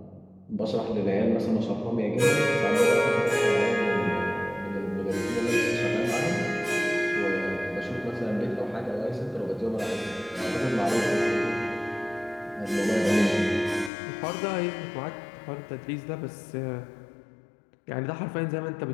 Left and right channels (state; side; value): drops out; right; at 13.9 s